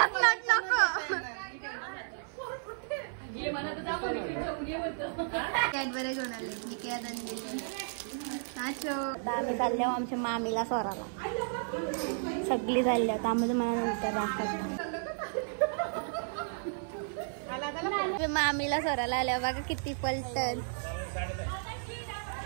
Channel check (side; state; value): left; silent; 56 dB below the other